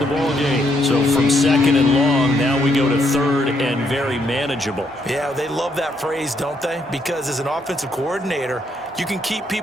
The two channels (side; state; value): both; normal; correlation 0.74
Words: ball game. So from 2nd and long, now we go to 3rd and very manageable. Yeah, they love that phrase, don't they? Because as an offensive coordinator, you can keep